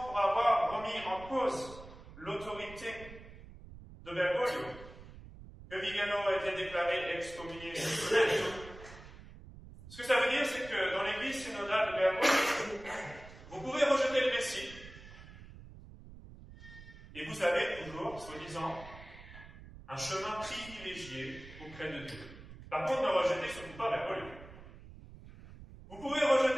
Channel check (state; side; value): noise; right; rumble, 17 dB below the sound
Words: pour avoir remis en cause l'autorité de Bergoglio que Vigano a été déclaré excommunié. Ce que ça veut dire, c'est que dans l'église synodale de Bergoglio, vous pouvez rejeter le Messie, et vous avez toujours, soi-disant, un chemin privilégié auprès de Dieu. Par contre, ne rejetez surtout pas Bergoglio. Vous pouvez